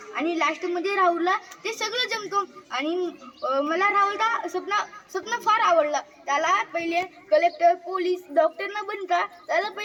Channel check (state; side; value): identical; both; correlation 1.00